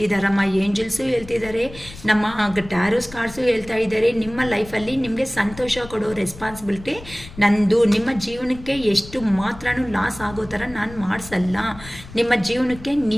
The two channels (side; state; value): left; noise; rumble, 17 dB below the sound